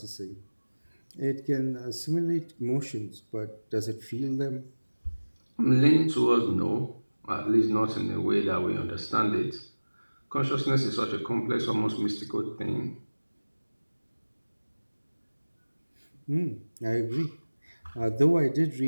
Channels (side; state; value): both; inverted; correlation -1.00